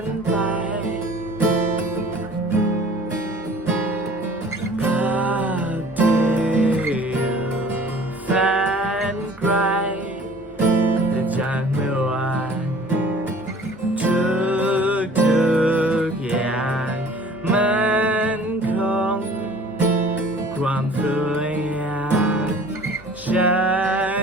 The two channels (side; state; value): both; normal; correlation 0.48